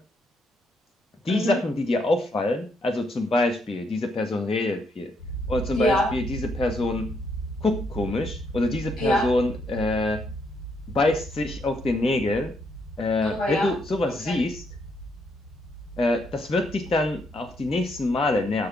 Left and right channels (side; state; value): both; normal; correlation 0.75